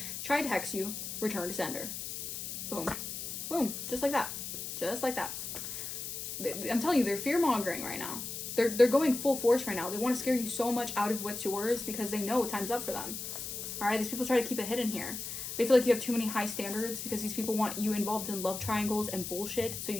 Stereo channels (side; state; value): left; noise; hiss, 6 dB below the sound